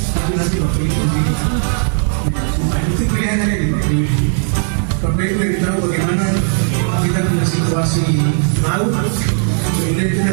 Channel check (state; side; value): silent; left; 65 dB below the other